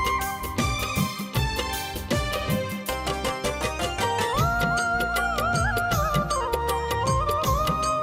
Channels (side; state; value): both; identical; correlation 1.00